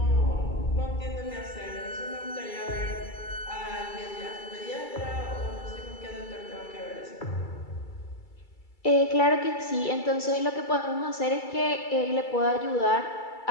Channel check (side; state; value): right; late; 2.3 ms